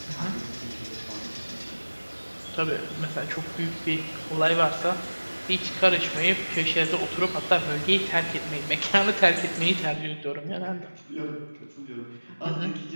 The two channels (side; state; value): both; inverted; correlation -1.00